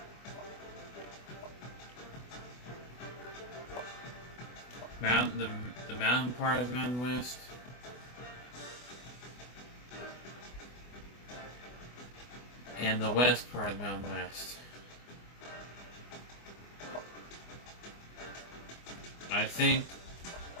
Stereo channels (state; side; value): late; right; 24 ms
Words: the mountain part of the Mountain West. And the west part of the Mountain West. I think